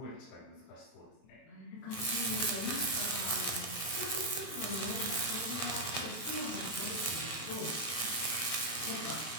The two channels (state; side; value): late; right; 23 ms